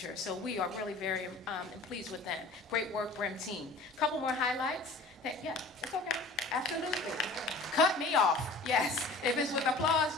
So we are really very pleased with them. Great work, Brim team. Couple more highlights. Yeah, it's okay. Absolutely. Cut me off. Yes. If it's with applause,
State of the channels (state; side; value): quieter; right; 3.3 dB